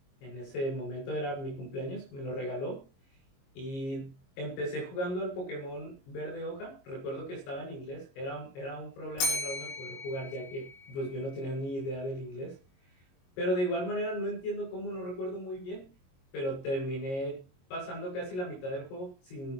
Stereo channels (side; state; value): right; late; 22 ms